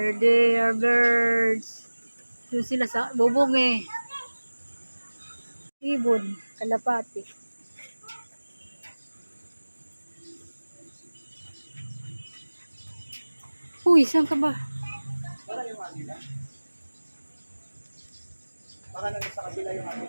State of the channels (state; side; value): inverted; both; correlation -1.00